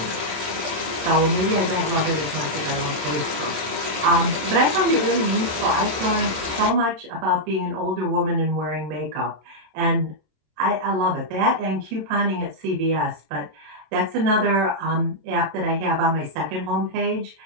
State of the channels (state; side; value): late; left; 27 ms